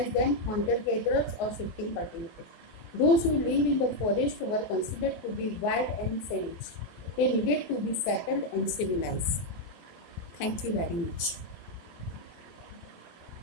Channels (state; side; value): late; right; 23 ms